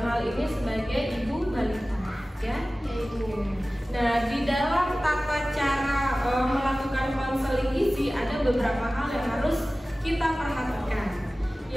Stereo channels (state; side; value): normal; both; correlation 0.97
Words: hal ini sebagai ibu balita, ya. Nah, di dalam tata cara melakukan konseling gizi ada beberapa hal yang harus kita perhatikan.